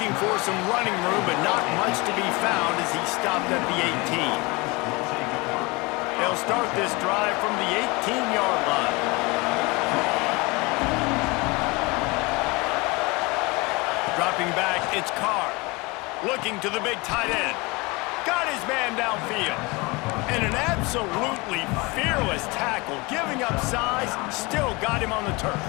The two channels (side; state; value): right; quieter; 25.3 dB